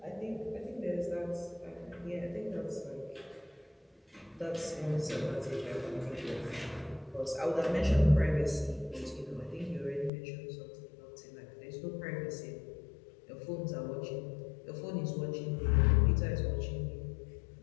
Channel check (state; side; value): drops out; right; at 10.1 s